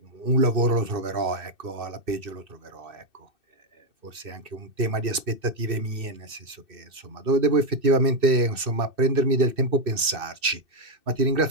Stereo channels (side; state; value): left; late; 2.6 ms